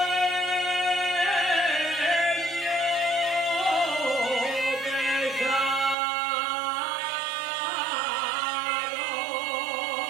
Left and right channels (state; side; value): drops out; left; at 6.0 s